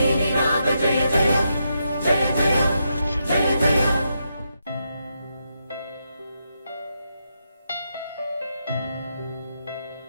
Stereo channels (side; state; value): both; inverted; correlation -0.83